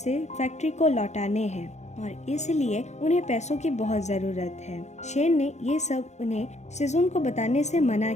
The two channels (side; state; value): right; late; 0.33 ms